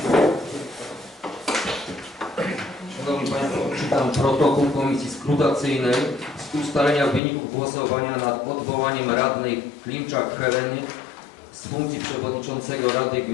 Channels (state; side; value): drops out; right; at 7.2 s